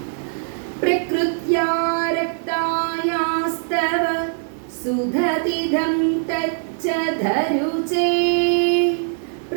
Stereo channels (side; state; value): left; silent; digital silence